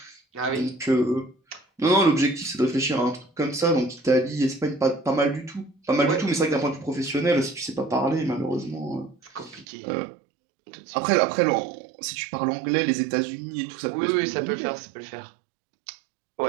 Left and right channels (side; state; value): left; drops out; at 9.7 s